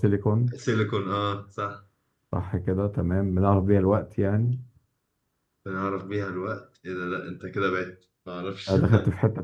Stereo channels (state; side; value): identical; both; correlation 1.00